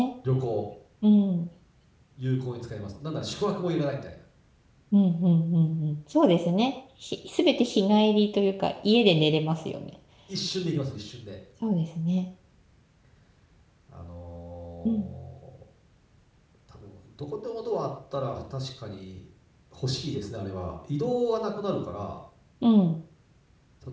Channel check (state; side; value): identical; both; correlation 1.00